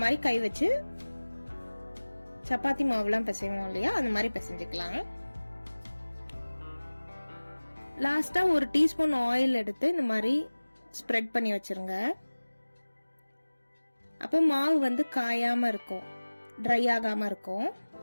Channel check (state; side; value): inverted; both; correlation -1.00